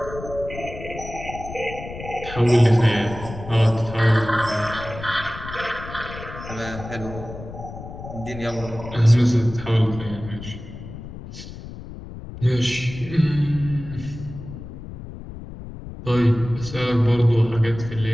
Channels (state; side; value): noise; left; rumble, 12 dB below the sound